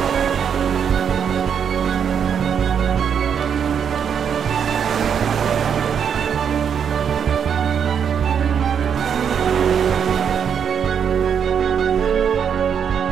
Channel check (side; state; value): left; quieter; 7.7 dB